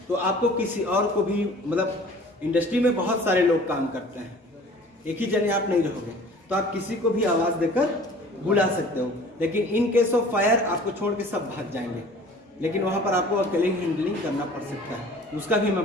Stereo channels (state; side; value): normal; both; correlation 0.47